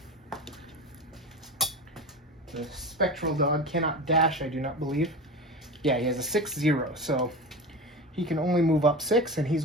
The spectral dog cannot dash, I do not believe. Yeah, he has a 6-0, so he can only move up 6, and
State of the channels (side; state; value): both; normal; correlation 0.28